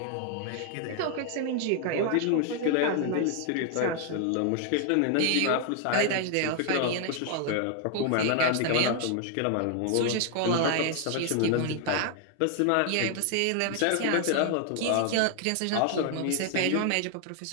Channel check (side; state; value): both; different; correlation 0.00